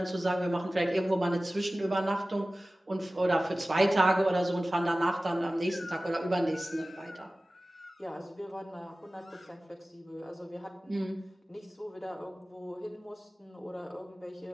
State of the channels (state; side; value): normal; both; correlation 0.97